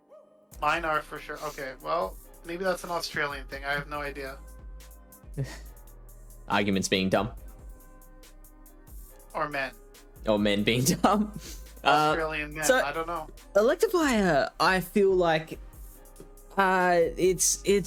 Mine are for sure. Okay, well, maybe that's an Australian thing. I have no idea. Arguments being dumb. Or men. Or men being dumb. Australian men. I don't know. Electivire, I feel like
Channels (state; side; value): identical; both; correlation 1.00